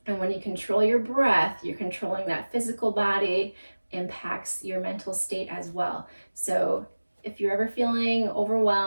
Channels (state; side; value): inverted; both; correlation -1.00